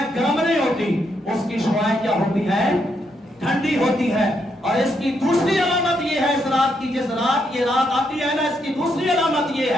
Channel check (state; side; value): normal; both; correlation 0.78